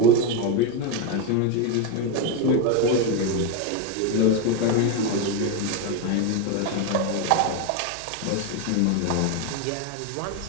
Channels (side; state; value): both; different; correlation 0.02